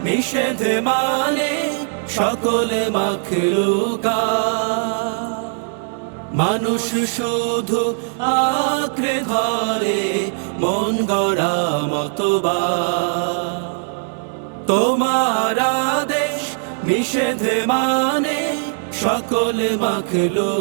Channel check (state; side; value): silent; left; digital silence